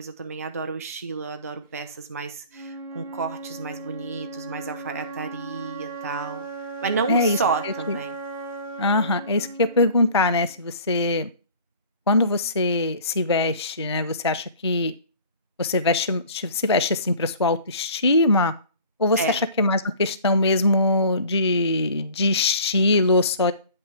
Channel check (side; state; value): both; inverted; correlation -0.46